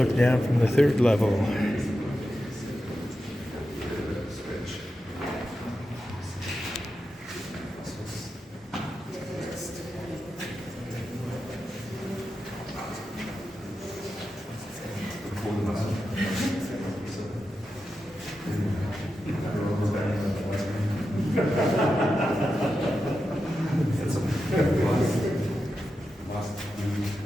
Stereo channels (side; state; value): both; normal; correlation 0.90